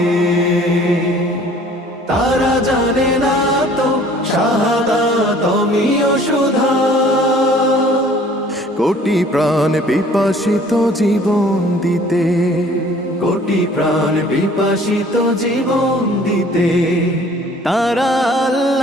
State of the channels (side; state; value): both; normal; correlation 0.53